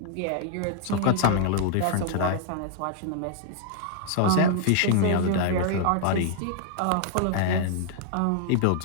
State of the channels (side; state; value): both; different; correlation -0.01